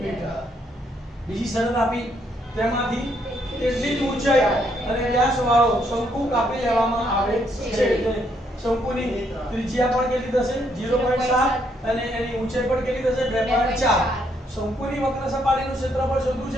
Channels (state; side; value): normal; both; correlation 0.72